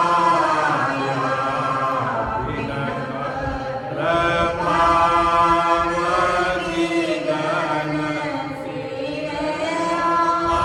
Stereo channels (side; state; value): both; identical; correlation 1.00